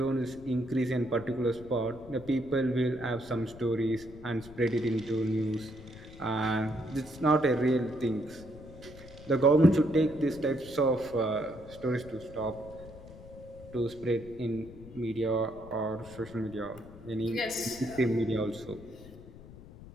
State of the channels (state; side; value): noise; left; rumble, 17 dB below the sound